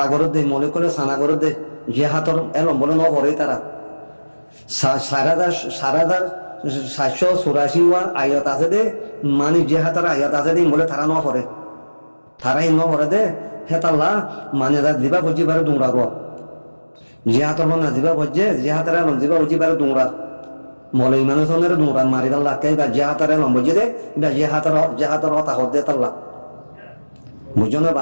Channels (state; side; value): inverted; both; correlation -1.00